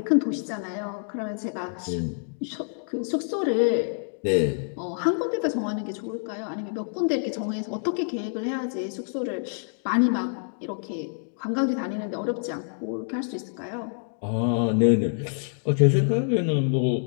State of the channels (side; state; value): right; silent; digital silence